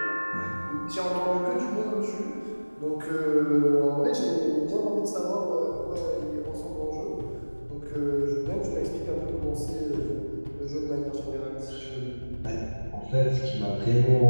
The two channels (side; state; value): both; inverted; correlation -1.00